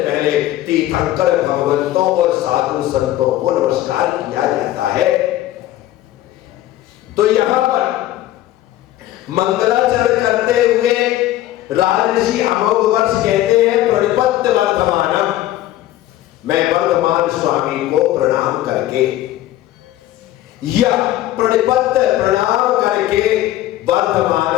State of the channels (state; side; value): quieter; right; 14.3 dB